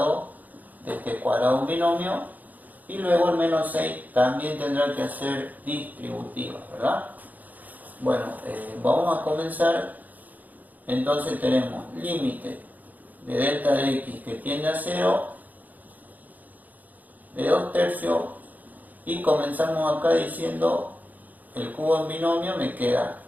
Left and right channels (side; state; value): left; late; 0.081 ms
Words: de este cuadrado de un binomio, y luego el menos 6 también tendrá que hacer distributivas, ¿verdad? Bueno, vamos a comenzar. Entonces tenemos límite de delta de x que tiende a 0 de 2/3, y comenzamos acá diciendo el cubo en binomio me queda